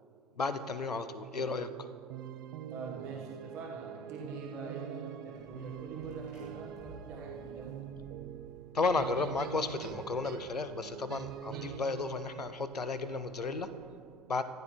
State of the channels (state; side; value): normal; both; correlation 0.47